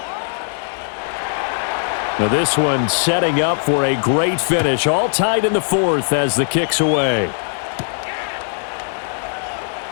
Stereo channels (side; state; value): right; silent; 63 dB below the other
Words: Now this one setting up for a great finish. All tied in the 4th as the kick's away.